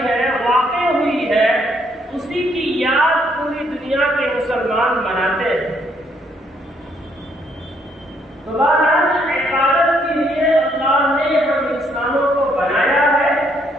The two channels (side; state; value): both; normal; correlation 0.70